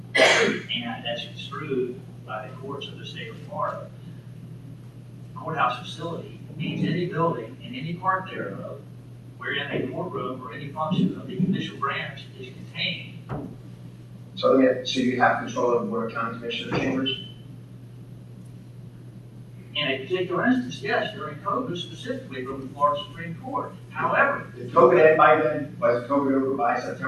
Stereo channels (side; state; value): both; identical; correlation 1.00